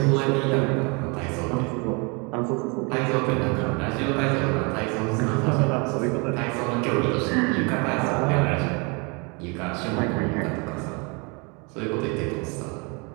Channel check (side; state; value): left; quieter; 31.0 dB